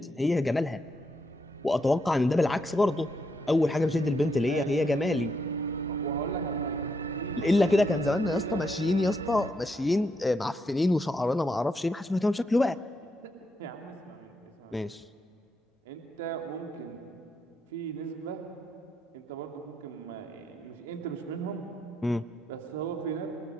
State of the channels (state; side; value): normal; both; correlation 0.79